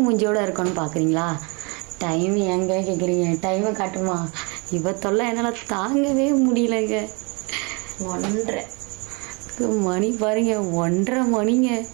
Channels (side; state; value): left; quieter; 30.7 dB